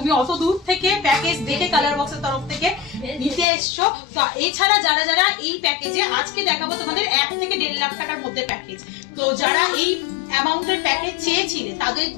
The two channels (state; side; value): drops out; right; at 3.5 s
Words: অত দূর থেকে প্যাকেজ দেখে কালার বক্সের তরফ থেকে নিতে এসছো। তো এছাড়া যারা যারা এই প্যাকেজে আজকে দেখাবো তোমাদের 1 থেকে 1.5 লাখ টাকার মধ্যে প্যাকেজ, তো যারা এই অ্যামাউন্টের প্যাকেজ চেয়েছিলে তাদের